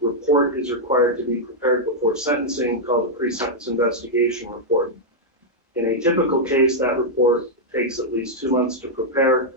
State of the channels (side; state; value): both; normal; correlation -0.04